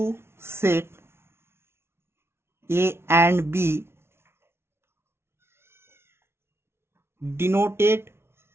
set A and B denoted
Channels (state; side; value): late; left; 0.12 ms